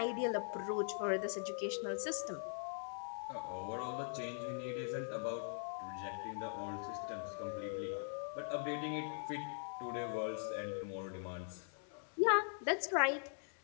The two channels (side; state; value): right; silent; digital silence